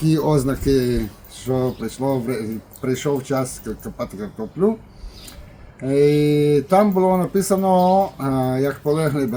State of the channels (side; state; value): both; identical; correlation 1.00